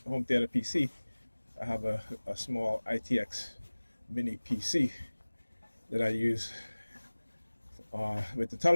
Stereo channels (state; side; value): inverted; both; correlation -1.00